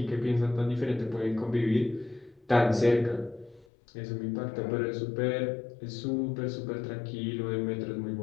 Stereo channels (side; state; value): right; drops out; at 3.7 s